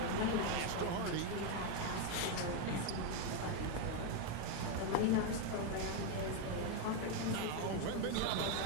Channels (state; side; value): different; both; correlation 0.02